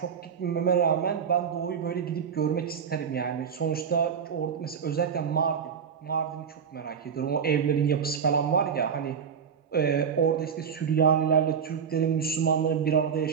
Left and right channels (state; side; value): quieter; left; 7.0 dB